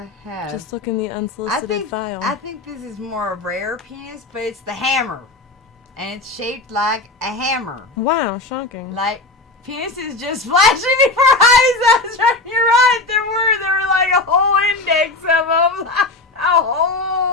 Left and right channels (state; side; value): quieter; right; 3.2 dB